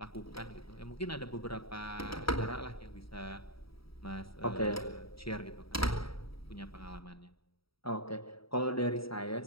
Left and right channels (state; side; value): late; right; 0.75 ms